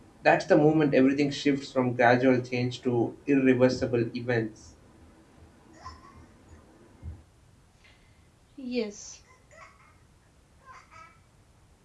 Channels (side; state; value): both; identical; correlation 1.00